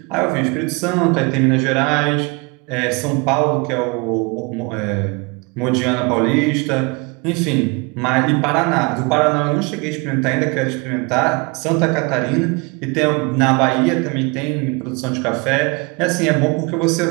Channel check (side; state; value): left; quieter; 28.6 dB